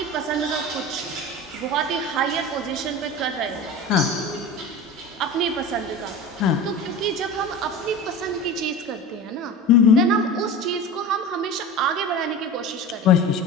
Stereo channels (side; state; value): both; normal; correlation 0.31